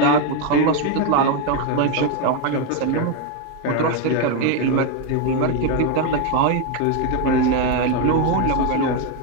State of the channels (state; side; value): different; both; correlation 0.02